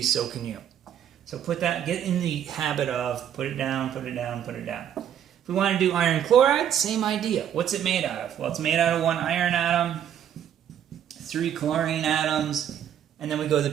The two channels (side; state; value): left; quieter; 9.7 dB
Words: so can you. So get in the habit of put it down, put it down, put it down. If we want to do iron chloride, same idea. What's it made out of? Well, it's made out of 1 iron atom, 3 chlorine atoms, and then we go to